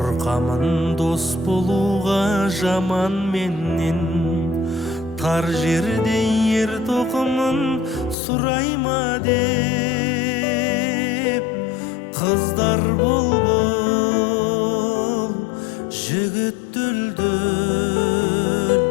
дос болуға жаман менен, тар жерде ер тоқымын сұрайма деп. Қыздар бол, жігіт дүлдүл,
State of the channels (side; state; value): right; drops out; at 8.2 s